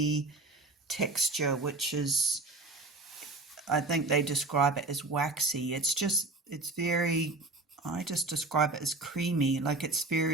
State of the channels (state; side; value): quieter; left; 3.2 dB